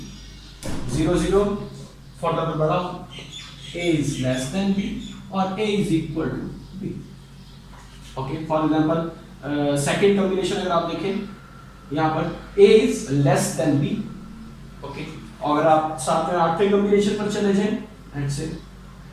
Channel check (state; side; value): identical; both; correlation 1.00